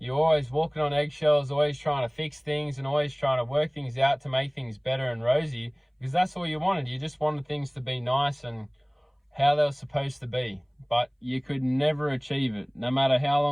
always walking on eggshells, always trying to fix things and always trying to work things out to make things better and rosy, because that's all you wanted. You just wanted things to be nice and how they were supposed to be, but you could never achieve it. No matter how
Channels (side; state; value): both; identical; correlation 1.00